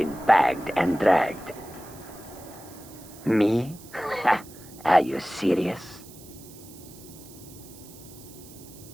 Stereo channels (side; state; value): right; noise; hiss, 19 dB below the sound